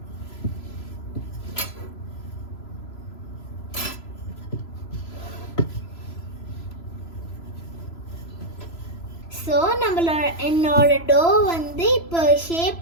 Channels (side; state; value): right; late; 3.0 ms